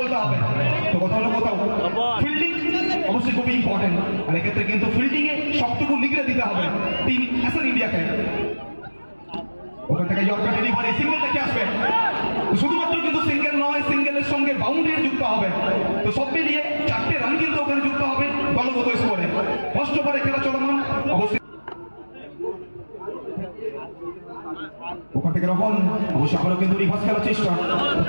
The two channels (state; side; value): inverted; both; correlation -1.00